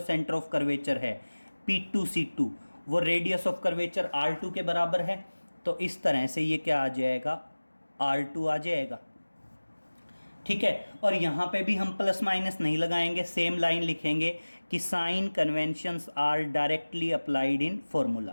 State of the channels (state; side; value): inverted; both; correlation -1.00